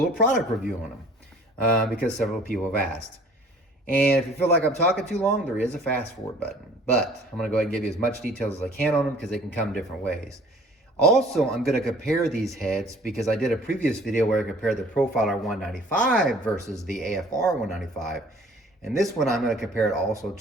product review on them because several people have asked. And if you feel like I'm talking too long, there is a fast forward button. But I'm going to go ahead and give you as much details as I can on them because they can come different ways. Also, I'm going to compare these heads because I did a previous video where I compared the Profiler 195 versus the AFR 195. And this one, I'm going to compare it also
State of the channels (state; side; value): normal; both; correlation 0.52